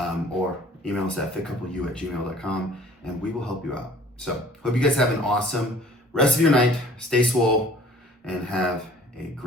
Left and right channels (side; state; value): both; normal; correlation 0.52